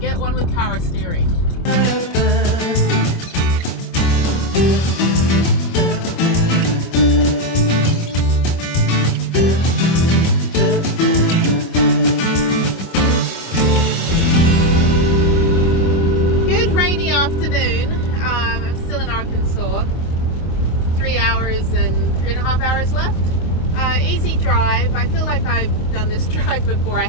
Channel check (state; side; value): late; right; 25 ms